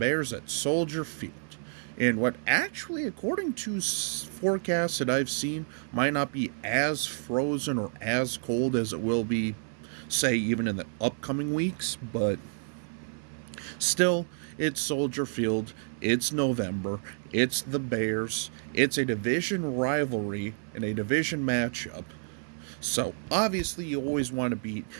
at Soldier Field in what actually, according to forecasts that I've seen, might not be as frozen or as cold as it will be, say, even in the upcoming weeks, but still, it's Soldier Field, it's November, it's the Bears, it's a division rivalry and a division matchup, so obviously you always want to beat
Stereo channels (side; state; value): left; silent; 57 dB below the other